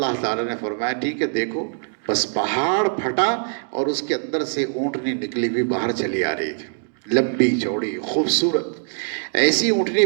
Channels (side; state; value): left; silent; digital silence